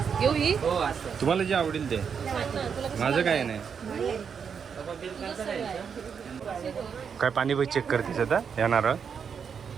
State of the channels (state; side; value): quieter; left; 6.8 dB